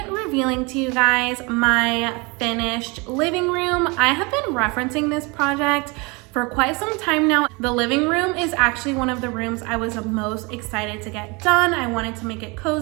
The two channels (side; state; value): left; quieter; 28.0 dB